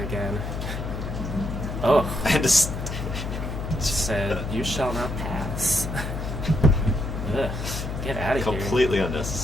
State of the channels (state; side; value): noise; left; hum, 5 dB below the sound